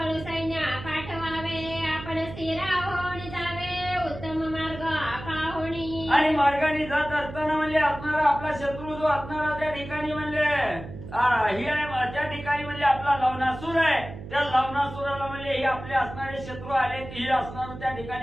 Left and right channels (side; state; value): right; noise; hum, 12 dB below the sound